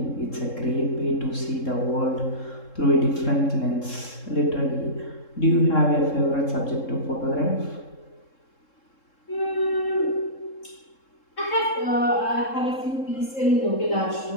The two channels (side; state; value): right; late; 3.7 ms